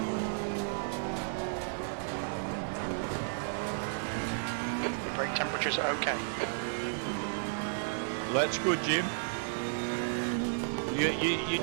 Your brake temperature's okay. That's good, Jim. You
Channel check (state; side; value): silent; left; digital silence